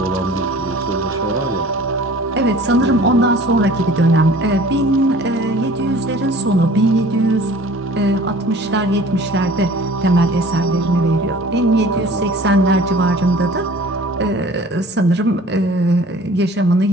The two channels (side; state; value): both; normal; correlation 0.47